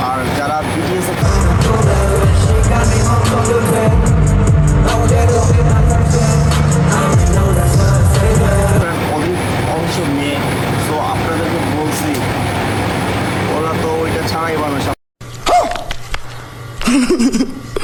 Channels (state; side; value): identical; both; correlation 1.00